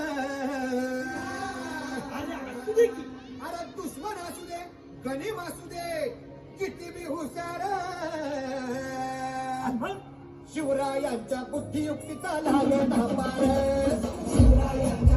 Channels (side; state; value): both; identical; correlation 1.00